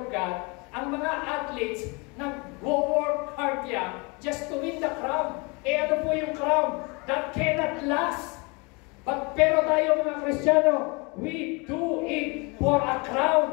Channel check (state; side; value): quieter; right; 29.2 dB